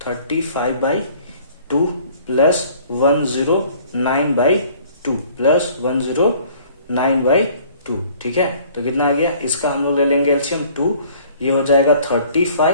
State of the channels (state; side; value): inverted; both; correlation -0.54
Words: प्लस 109/2 ठीक है, तो कितना आ गया, इसका हम लोग ले लेंगे एलसीएम 2, ये हो जाएगा